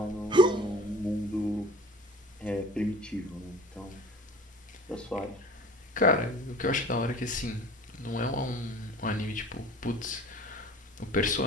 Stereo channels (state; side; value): normal; both; correlation 0.43